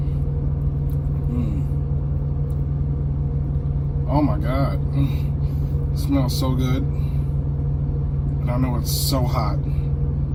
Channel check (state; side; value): identical; both; correlation 1.00